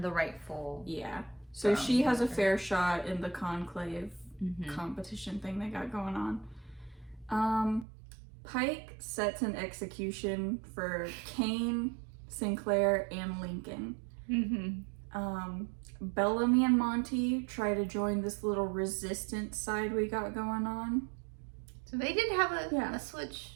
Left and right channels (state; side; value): drops out; left; at 7.9 s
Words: the rightful. Yeah. So she has a fair shot in the conclave competition thing they got going on. Pike sets an execution for Kane, Sinclair, and Lincoln. Bellamy and Monty try to join this little resistance side we got going on. So they did have a switch,